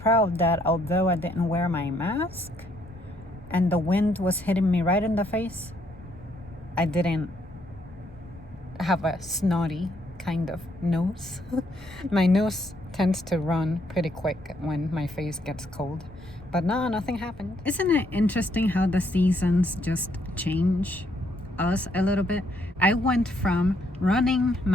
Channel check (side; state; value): both; normal; correlation 0.71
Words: that although I didn't wear my mask and the wind was hitting me right in the face, I didn't have a snotty kind of nose. My nose tends to run pretty quick when my face gets cold. But no, nothing happened. Isn't it interesting how the seasons just change us a little bit? I went from running